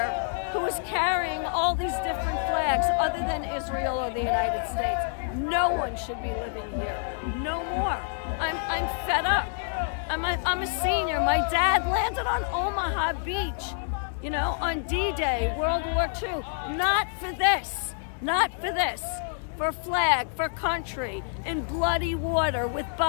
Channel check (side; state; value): right; silent; digital silence